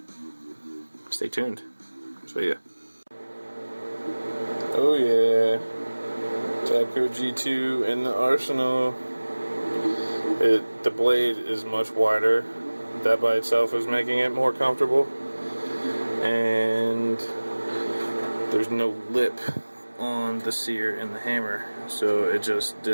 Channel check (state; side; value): inverted; both; correlation -1.00